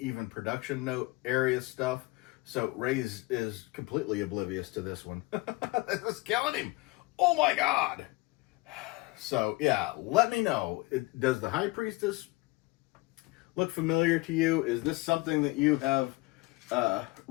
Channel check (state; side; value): quieter; right; 22.5 dB